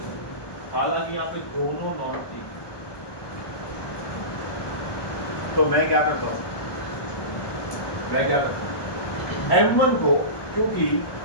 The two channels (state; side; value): late; right; 1.2 ms